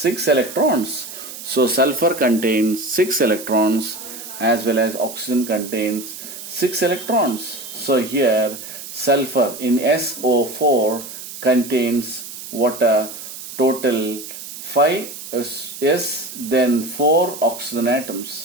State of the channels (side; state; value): right; noise; hiss, 11 dB below the sound